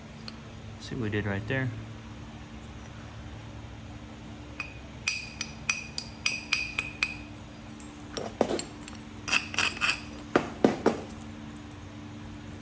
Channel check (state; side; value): identical; both; correlation 1.00